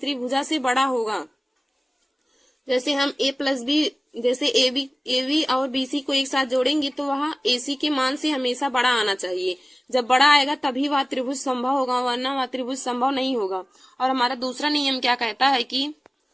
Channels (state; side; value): normal; both; correlation 0.97